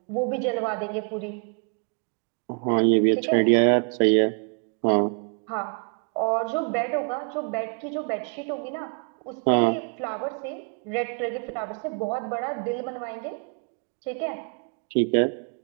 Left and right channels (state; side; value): quieter; left; 39.3 dB